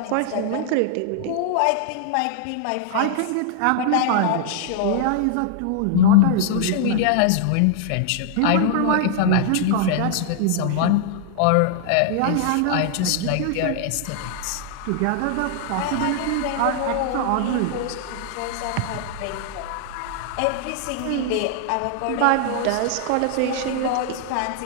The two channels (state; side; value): different; both; correlation -0.01